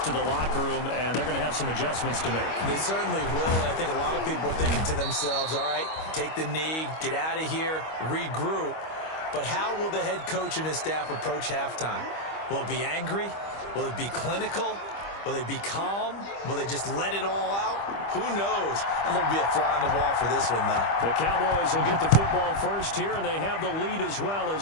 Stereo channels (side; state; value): right; late; 25 ms